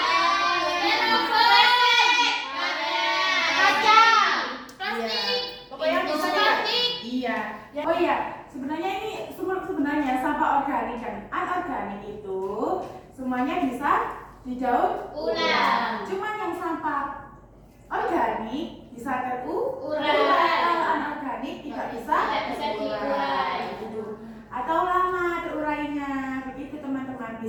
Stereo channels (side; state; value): both; identical; correlation 1.00